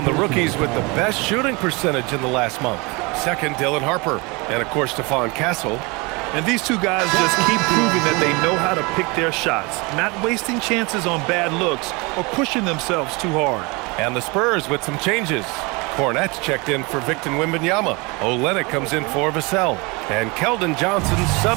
the rookies with the best shooting percentage in the last month. Second, Dylan Harper. And, of course, Stephon Castle. And these two guys just keep proving that they know how to pick their shots, not wasting chances on bad looks or pushing themselves too hard. And the Spurs with some changes. Hornets checked in for Victor Wembanyama. Olynyk comes in for Vassell. And Keldon Johnson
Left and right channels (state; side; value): quieter; left; 27.1 dB